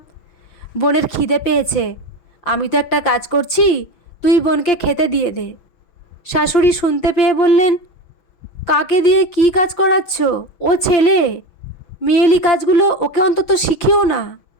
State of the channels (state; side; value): late; right; 6.1 ms